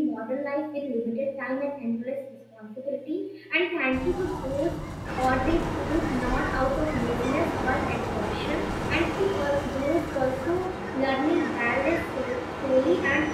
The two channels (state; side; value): identical; both; correlation 1.00